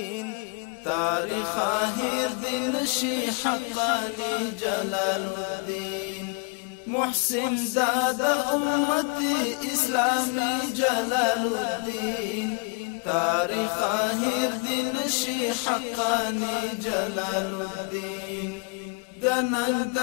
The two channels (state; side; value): quieter; right; 33.5 dB